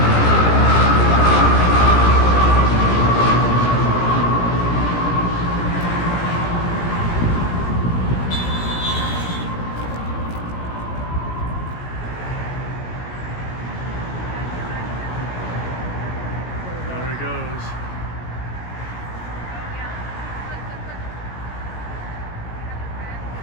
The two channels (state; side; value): late; right; 17 ms